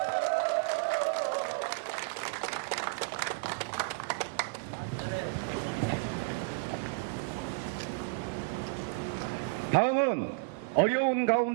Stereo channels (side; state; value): left; quieter; 30.2 dB